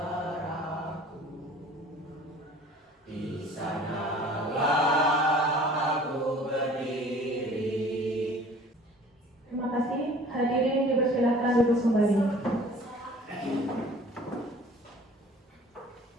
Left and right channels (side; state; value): both; normal; correlation 0.49